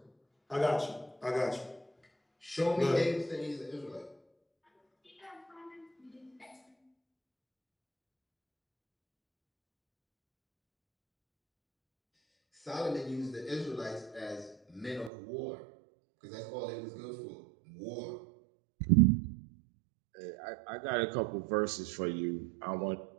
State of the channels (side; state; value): left; drops out; at 15.1 s